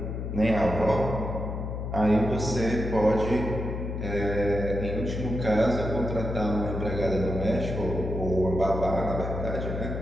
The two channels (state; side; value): noise; left; hum, 4 dB below the sound